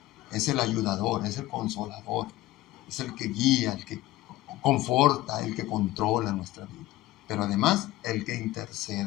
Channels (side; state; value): right; quieter; 16.5 dB